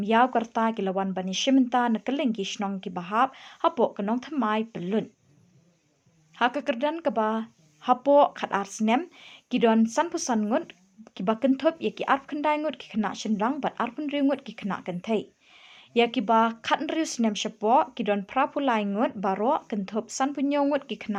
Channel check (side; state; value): both; identical; correlation 1.00